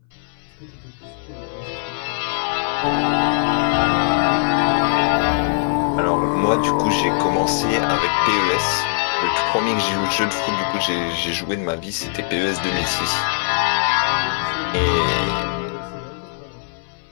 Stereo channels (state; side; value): silent; right; 61 dB below the other